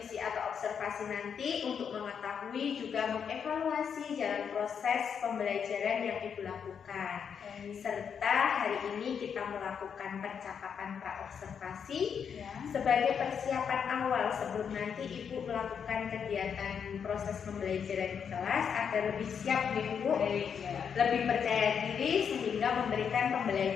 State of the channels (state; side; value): quieter; right; 7.2 dB